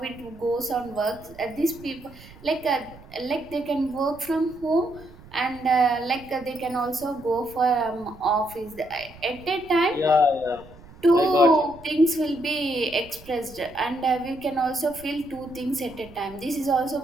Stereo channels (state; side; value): noise; right; rumble, 21 dB below the sound